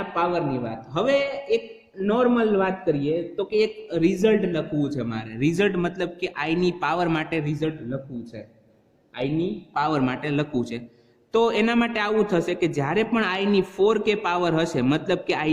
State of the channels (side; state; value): both; identical; correlation 1.00